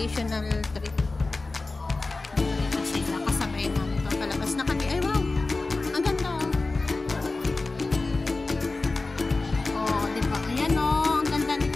trip. Kasi nakasabay namin ito palabas na kami. Ay, wow! Ang ganda, oh. Oh, diba? Ayan, oh. Ang ganda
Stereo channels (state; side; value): quieter; right; 3.4 dB